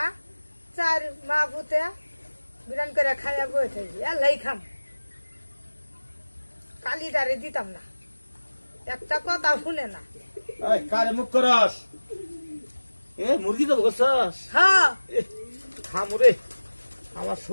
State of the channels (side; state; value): both; inverted; correlation -1.00